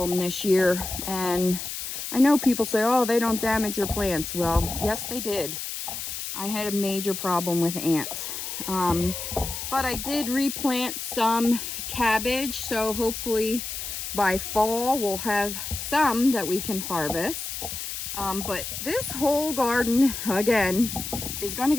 this year, and I know people say, oh, they don't damage your plants. Well, yes, they did. I had a major problem with ants. But I did replant some cabbage, so hopefully by fall we'll have some that we can harvest. But this whole garden, again, is going to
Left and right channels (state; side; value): noise; left; hiss, 6 dB below the sound